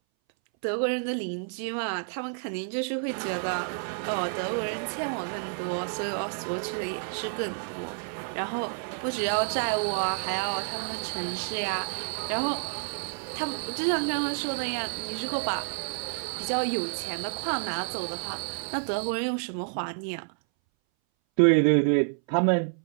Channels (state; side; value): silent; left; 58 dB below the other